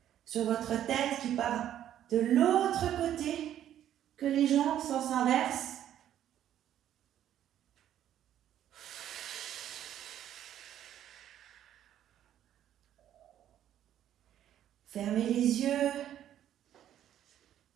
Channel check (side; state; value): left; quieter; 11.1 dB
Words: sur votre tête qui part de l'autre côté, que les jambes sens inverse. Fermez les yeux.